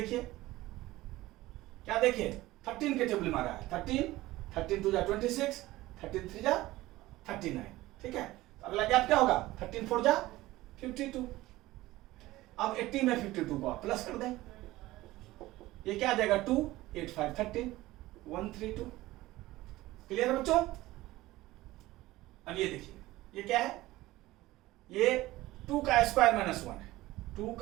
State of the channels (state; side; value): quieter; left; 17.7 dB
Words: क्या देखिए 13 के टेबल मारा है 13 2 जा 26, 13 3 जा 39। ठीक है, तो अगला गैप क्या होगा 13 4 जा 52। अब 80 में 52 को आप प्लस कर दें, ये क्या आ जाएगा 2 8 5 30 132। क्लियर है बच्चों? अब ये देखिए ये क्या है, ये 2 का स्क्वायर माइनस 1 है, 2